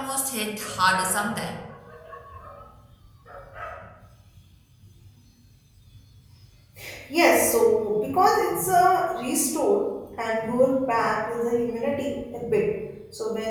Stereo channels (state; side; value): identical; both; correlation 1.00